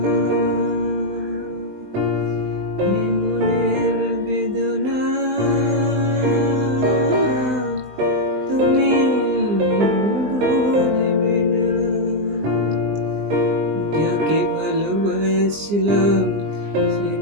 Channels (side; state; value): left; late; 20 ms